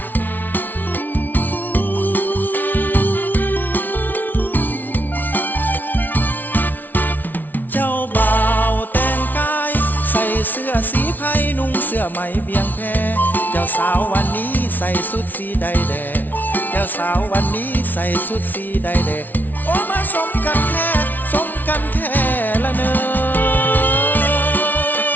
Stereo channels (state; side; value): late; right; 0.084 ms